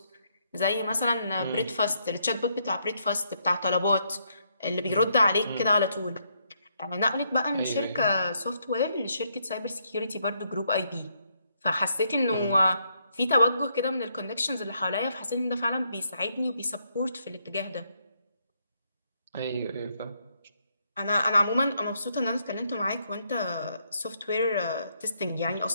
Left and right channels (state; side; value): inverted; both; correlation -0.75